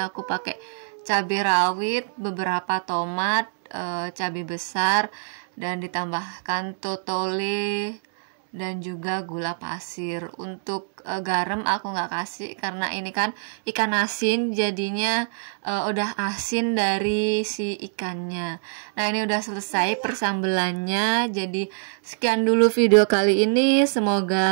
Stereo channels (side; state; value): left; silent; digital silence